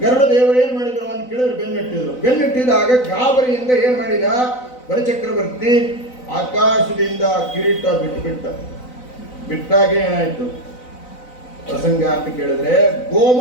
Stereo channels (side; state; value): right; late; 4.0 ms